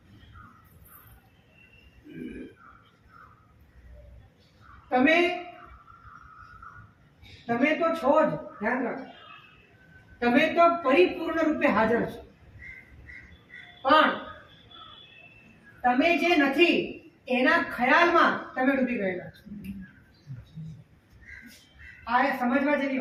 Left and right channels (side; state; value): both; identical; correlation 1.00